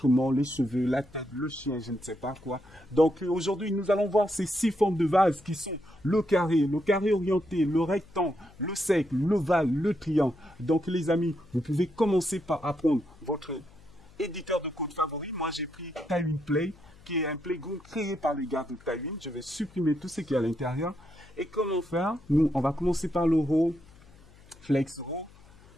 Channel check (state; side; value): noise; left; hum, 25 dB below the sound